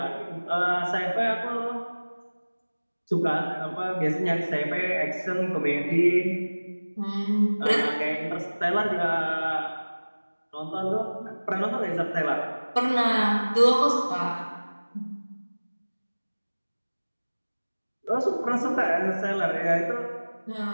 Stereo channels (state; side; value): inverted; both; correlation -1.00